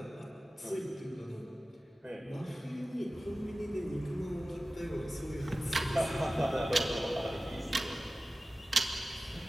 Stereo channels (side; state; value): both; normal; correlation 0.96